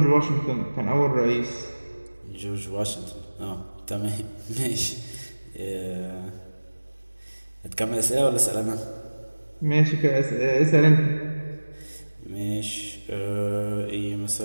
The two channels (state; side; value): inverted; both; correlation -1.00